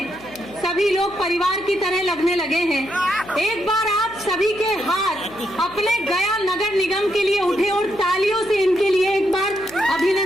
सभी लोग परिवार की तरह लगने लगे हैं। एक बार आप सभी के हाथ अपने गया नगर निगम के लिए उठे और तालियों से इनके लिए एक बार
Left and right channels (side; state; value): left; noise; hum, 21 dB below the sound